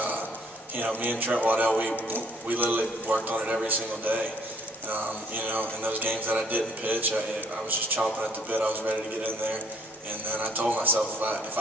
Me and Trent Waddell, we literally worked on it every single day. In those games that I didn't pitch, I was just chomping at the bit. I was ready to get in there. And then I told myself if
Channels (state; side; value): normal; both; correlation 0.61